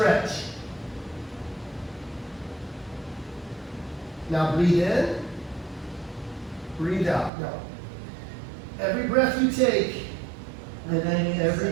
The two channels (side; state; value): left; drops out; at 7.3 s